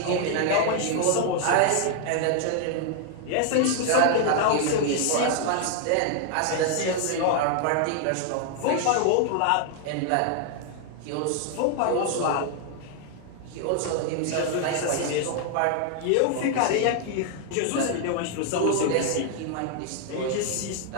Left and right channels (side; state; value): both; different; correlation 0.00